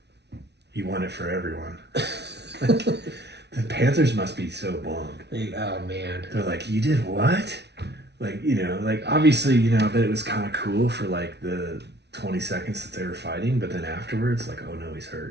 He won it for everyone. The Panthers must be so bummed. Oh, man. They're like, you did what? Like, obviously, I bet it was kind of cool for like the 20 seconds that they were fighting, but then afterwards, like, oh no, he's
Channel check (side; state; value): left; late; 0.50 ms